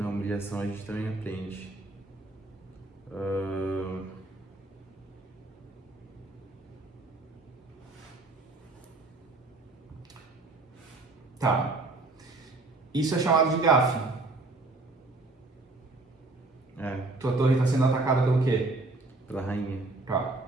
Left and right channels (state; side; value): quieter; left; 3.1 dB